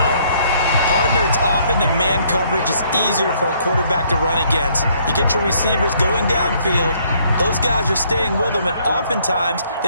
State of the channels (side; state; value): both; inverted; correlation -0.66